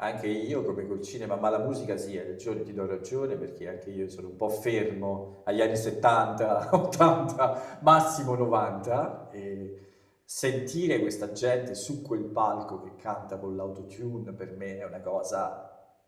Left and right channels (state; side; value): identical; both; correlation 1.00